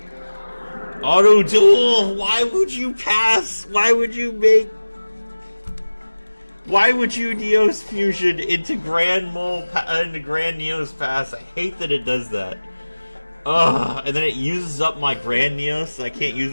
Auto Duel! Why would you pass? Why would you make... Why would you Neos Fusion into Grand Neos Pass? I hate that it does that. Ugh, and then it uses up my Grand Neos, so I can't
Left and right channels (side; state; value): both; inverted; correlation -1.00